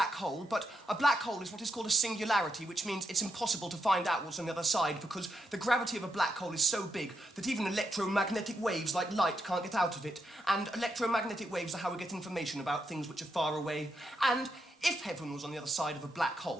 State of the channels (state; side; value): normal; both; correlation 0.81